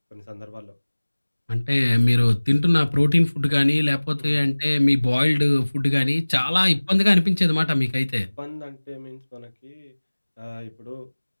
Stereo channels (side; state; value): both; inverted; correlation -1.00